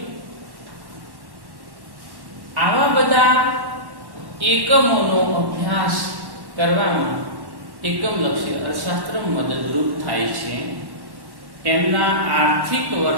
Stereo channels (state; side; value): late; left; 1.1 ms